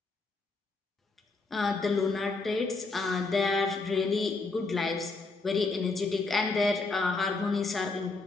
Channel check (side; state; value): right; quieter; 3.8 dB